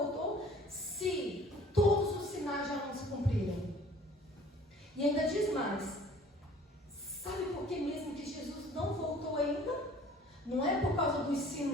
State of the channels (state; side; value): normal; both; correlation 0.51